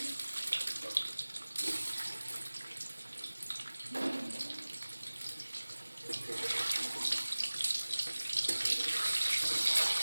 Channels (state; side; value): inverted; both; correlation -1.00